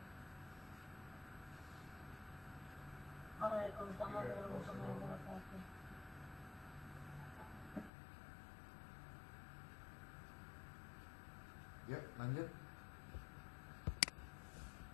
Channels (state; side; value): drops out; right; at 7.9 s